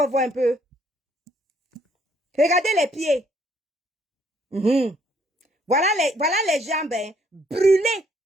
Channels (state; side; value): normal; both; correlation 0.66